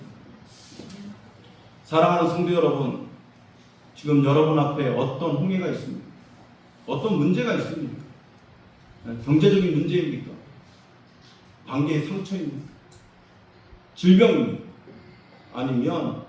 사랑하는 성도 여러분, 지금 여러분 앞에 어떤 홍해가 있습니까? 어떤 문제가 있습니까? 경제적인 문제입니까? 관계의 상처입니까? 질병입니까? 아니면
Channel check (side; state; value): both; identical; correlation 1.00